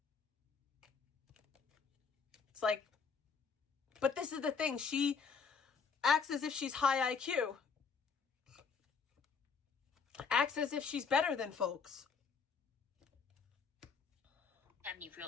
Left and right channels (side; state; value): right; quieter; 5.8 dB